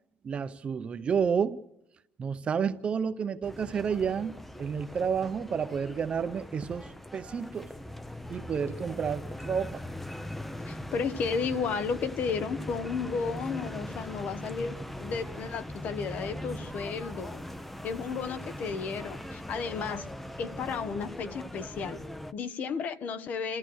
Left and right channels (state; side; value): normal; both; correlation 0.67